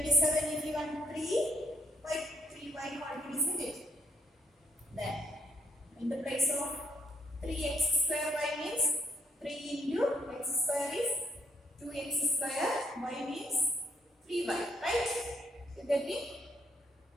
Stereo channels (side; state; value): both; normal; correlation 0.71